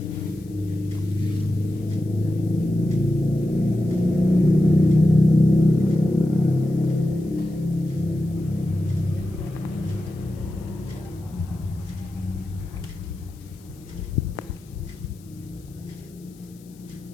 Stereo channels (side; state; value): left; noise; hiss, 28 dB below the sound